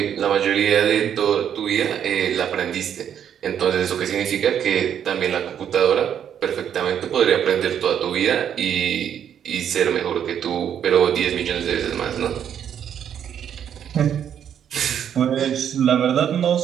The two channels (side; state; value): left; quieter; 9.0 dB